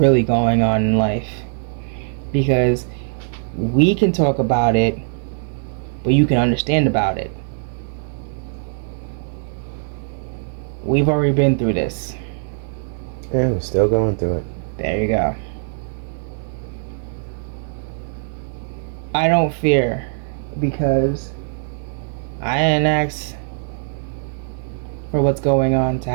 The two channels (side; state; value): left; silent; 65 dB below the other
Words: going on in life. Because we can talk about it, but you can understand about it. We've already been through this. Yeah, we're still going through it. There you go. I don't fear, because I didn't ask for what's going on to